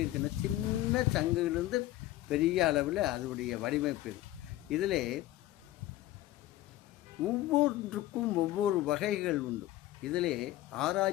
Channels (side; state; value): right; quieter; 15.3 dB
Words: இருக்குன்னா, சின்ன சங்குகளிலிருந்து பெரிய அளவில் அதனுடைய வடிவமைப்பு. இதில் ஒவ்வொன்றுக்கும் ஒவ்வொரு வகைகள் உண்டு. இதிலே